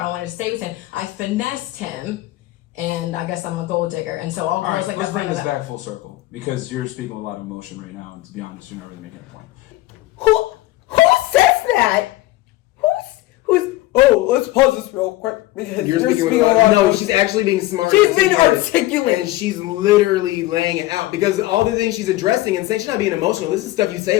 wanted to stay with him. I finessed him, and I guess I'm a gold digger. And so all girls All right, like let's that. bring this back full circle because you're speaking with a lot of emotion right now, and to be honest, you're not really making a point. Who says that? Who's? Oh, let's pause this real quick. You're speaking with a lot. No, she's actually being smart. She's being articulate. And she's literally laying it out because all the things she's addressing and saying she's not being emotional. This is stuff you say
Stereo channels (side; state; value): right; quieter; 17.6 dB